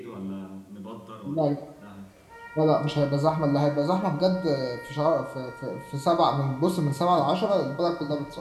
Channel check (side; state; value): both; identical; correlation 1.00